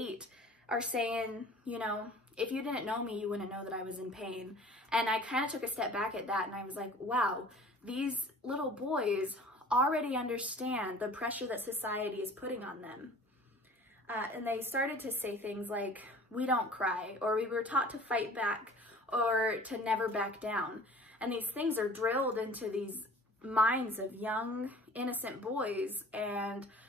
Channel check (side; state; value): both; normal; correlation 0.46